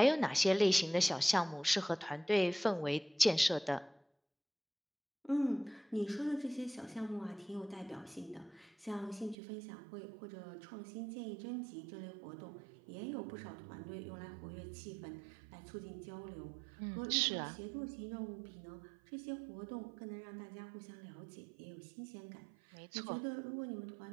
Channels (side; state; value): left; drops out; at 9.3 s